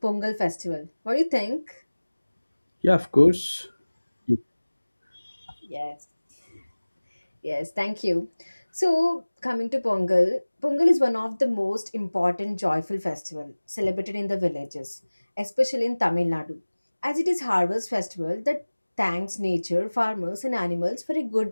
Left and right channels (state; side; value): inverted; both; correlation -1.00